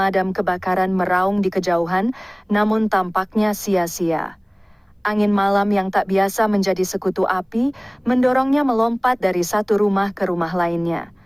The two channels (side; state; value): both; identical; correlation 1.00